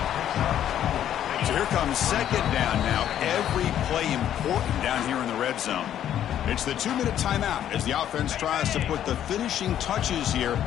So here comes second down now. Every play important down here in the red zone. It's the 2-minute timeout as the offense tries to put the finishing touches here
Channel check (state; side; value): quieter; right; 10.7 dB